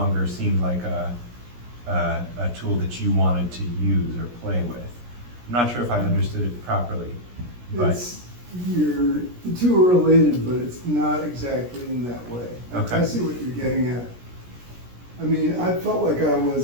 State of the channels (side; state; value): left; late; 17 ms